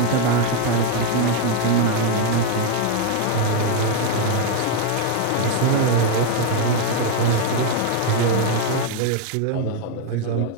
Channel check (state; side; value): different; both; correlation 0.00